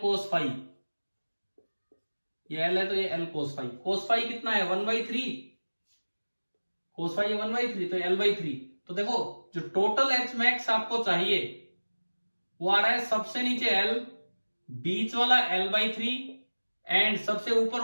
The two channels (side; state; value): both; inverted; correlation -1.00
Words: फाई, ये l है तो ये l cos phi. Cos phi कितना है 1/3, कोस फाई 1/3, तो l/3। तो देखो जो टोटल एच मैक्स आपको चाहिए वो आ रहा है सबसे नीचे l, बीच वाला l/3 एंड सबसे ऊपर